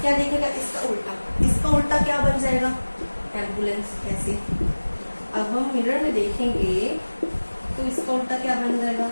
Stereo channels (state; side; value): inverted; both; correlation -1.00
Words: देखेगा, इसका उल्टा। इसका उल्टा क्या बन जाएगा, एम्बुलेंस। ऐसे अब हम मिरर में देखेंगे तो इसका उल्टा क्या बन जाएगा,